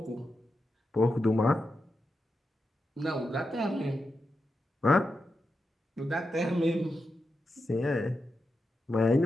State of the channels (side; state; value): both; normal; correlation 0.88